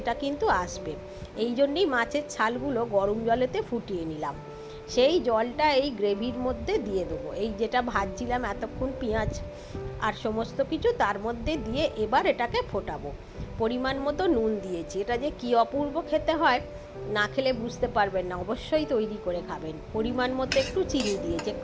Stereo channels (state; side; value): identical; both; correlation 1.00